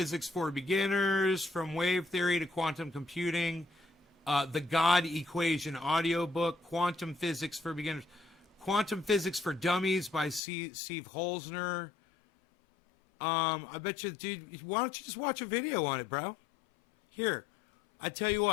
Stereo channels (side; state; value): right; drops out; at 10.4 s